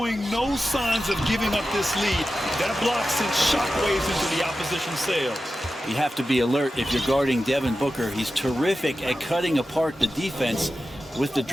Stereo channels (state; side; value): normal; both; correlation 0.93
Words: no signs of giving up this lead. That block sent shockwaves into the opposition sails. You have to be alert if you're guarding Devin Booker. He's terrific at cutting apart the defense with the